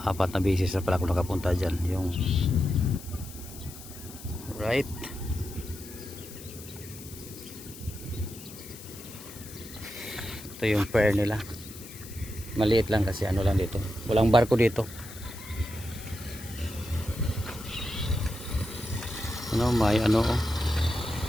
4 na beses na pala ako nakapunta dyan. Yung right. Ito yung pier nila. Maliit lang kasi ano lang dito. Walang barko dito. Ano, may ano,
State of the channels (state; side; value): noise; left; hiss, 15 dB below the sound